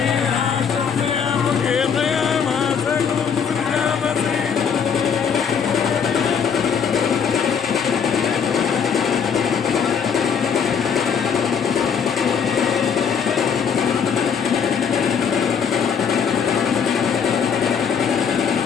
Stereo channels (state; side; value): quieter; right; 6.9 dB